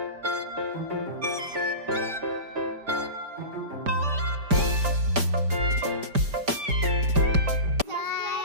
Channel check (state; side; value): late; left; 5.0 ms